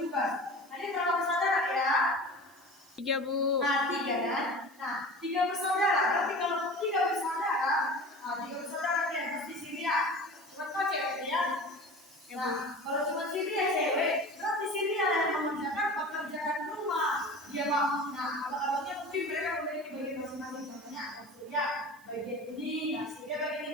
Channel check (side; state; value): right; noise; hiss, 27 dB below the sound